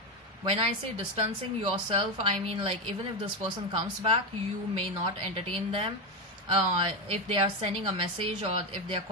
When I say distancing yourself, I mean, like, even if this person comes back, you may not entertain them. If they are sending a message or if they are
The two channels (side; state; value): both; normal; correlation 0.11